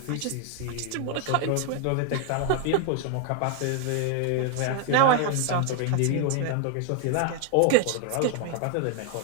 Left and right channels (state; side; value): different; both; correlation 0.01